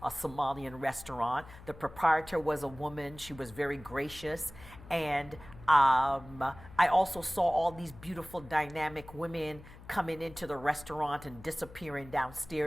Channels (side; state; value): left; noise; hum, 18 dB below the sound